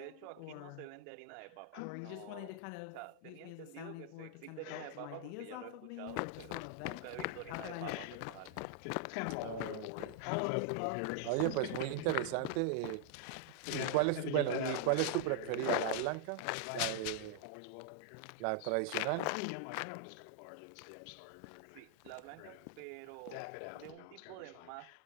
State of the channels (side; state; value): both; different; correlation 0.00